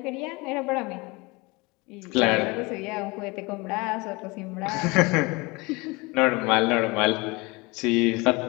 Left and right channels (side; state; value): right; quieter; 25.1 dB